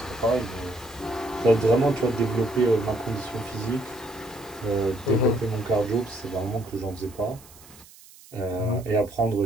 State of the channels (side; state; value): right; noise; hiss, 22 dB below the sound